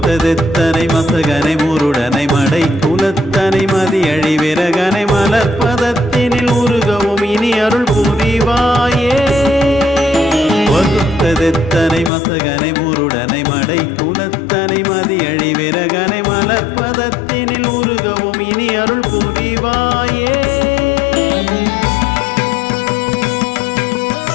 மசகனை முருடனை மடை குலத்தனை மதியழி விரகனை மலர்பதத்தினில் உருகவும் இனி அருள் புரிவாயே வகுத்ததெத்தனை மசகனை முருடனை மடை குலத்தனை மதியழி விரகனை மலர்பதத்தினில் உருகவும் இனி அருள் புரிவாயே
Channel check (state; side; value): drops out; right; at 12.1 s